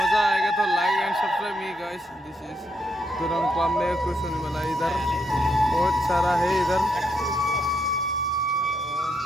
आएगा तो like and subscribe me guys. This is दुरंग पामे कुछ होने वाला इधर बहुत सारा है इधर है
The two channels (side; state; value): both; normal; correlation 0.77